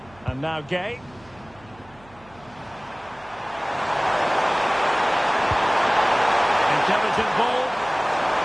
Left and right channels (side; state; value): right; noise; hum, 26 dB below the sound